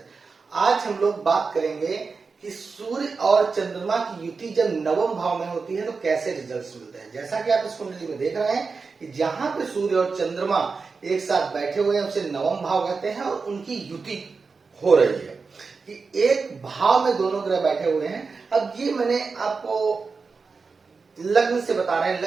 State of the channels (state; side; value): quieter; left; 4.6 dB